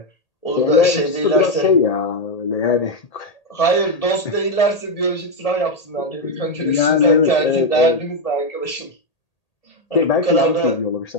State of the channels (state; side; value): late; right; 1.8 ms